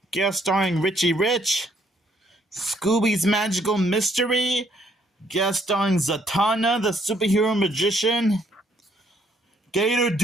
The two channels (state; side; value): normal; both; correlation 0.68